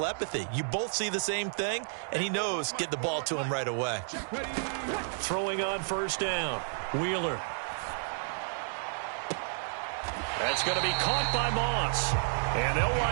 You both see the same thing, and he knows get the ball to him right away. Throwing on first down, Wheeler. That's going to be caught by Moss. And they'll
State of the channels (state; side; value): silent; left; digital silence